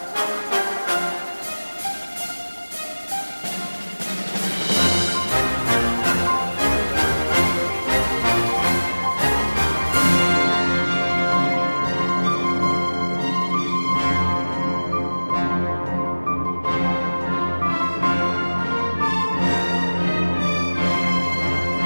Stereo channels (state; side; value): inverted; both; correlation -1.00